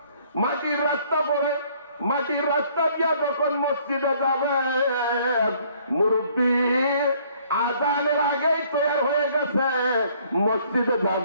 পরে, মাটির রাস্তা দিয়া যখন মসজিদে যাবে, মুরব্বী আজানের আগেই তৈরি হয়ে গেছে, মসজিদে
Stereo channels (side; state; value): both; inverted; correlation -0.61